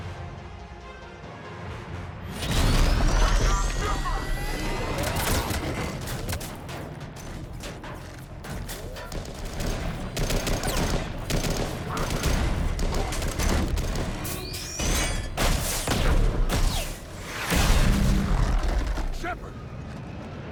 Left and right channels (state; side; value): identical; both; correlation 1.00